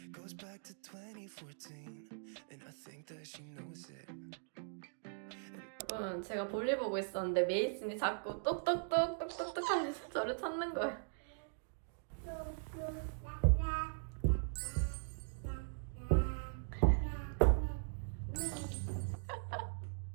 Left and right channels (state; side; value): silent; left; digital silence